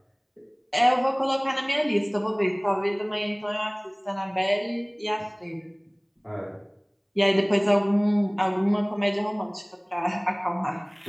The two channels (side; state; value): both; identical; correlation 1.00